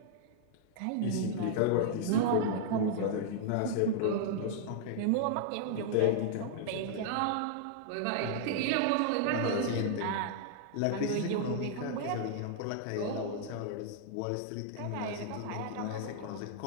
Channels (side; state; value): both; different; correlation -0.01